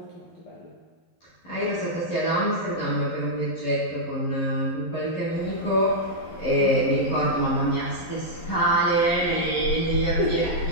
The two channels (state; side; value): late; right; 11 ms